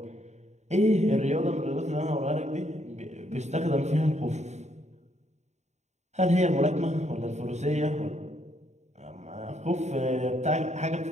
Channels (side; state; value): left; late; 0.33 ms